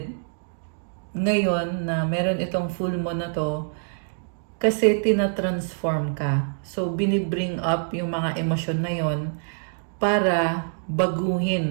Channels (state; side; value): silent; left; digital silence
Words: ngayon na meron itong full moon na to kasi tina-transform ka. So, binibring up yung mga emosyon na yon para